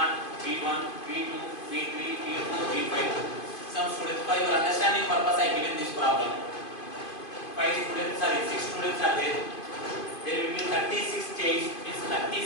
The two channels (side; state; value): right; late; 2.5 ms